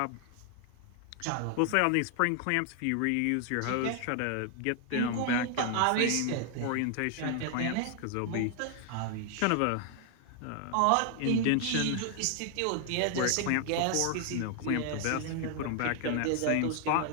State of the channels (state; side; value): different; both; correlation 0.00